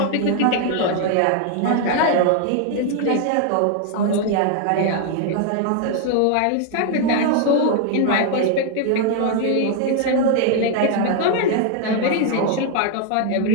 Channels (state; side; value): different; both; correlation 0.00